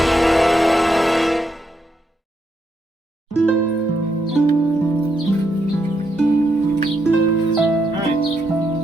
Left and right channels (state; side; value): normal; both; correlation 0.79